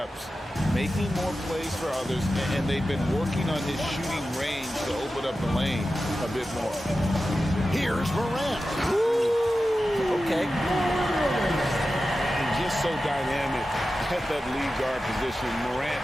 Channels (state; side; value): normal; both; correlation 0.93